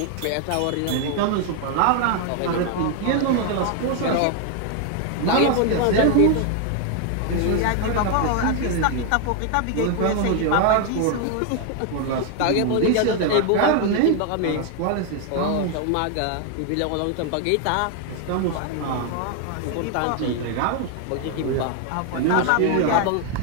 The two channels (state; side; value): different; both; correlation 0.00